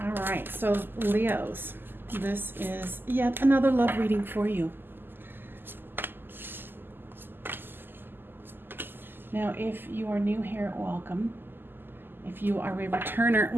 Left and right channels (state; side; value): late; left; 0.095 ms